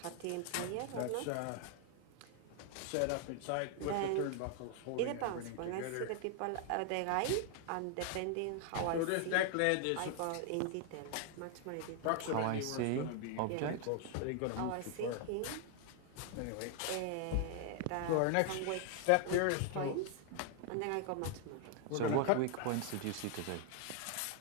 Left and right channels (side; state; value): both; different; correlation 0.00